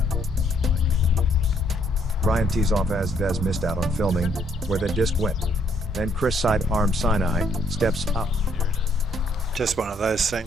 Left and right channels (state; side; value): normal; both; correlation 0.68